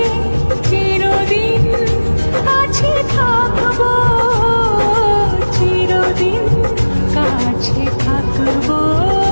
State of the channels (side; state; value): both; inverted; correlation -1.00